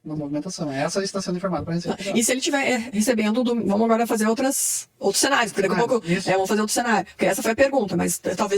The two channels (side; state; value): both; identical; correlation 1.00